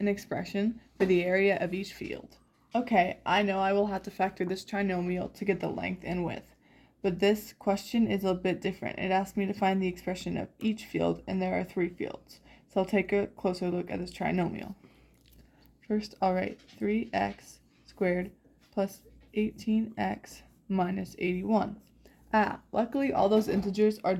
expression for the area of each field. Okay, I know I will have to factor this trinomial to get the length and width. But this question is a bit different. It asks me to find the expression of each field, and there are 3 fields. So I'll take a closer look at this trinomial. First, I'll write 3x squared plus 18x minus 81. Luckily all those integers are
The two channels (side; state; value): both; identical; correlation 1.00